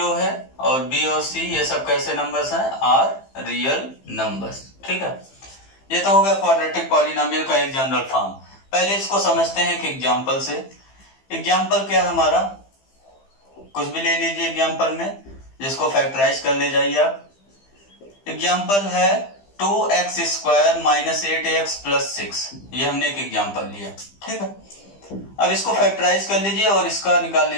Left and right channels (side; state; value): right; late; 15 ms